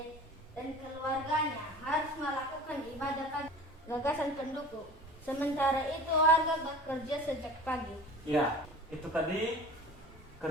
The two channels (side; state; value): both; normal; correlation 0.40